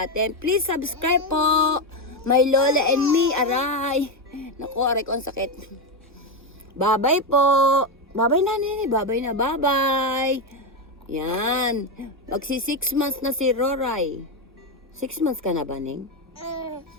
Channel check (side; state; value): both; normal; correlation 0.09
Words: atin. Please subscribe po. My Lola and me, aray. Naku, aray ko ang sakit. Bye-bye po. Bye-bye na, nene. Bye-bye na, bye-bye. Yan. Magsi 6 months na si Roray. 6 months ka na ba, Ning?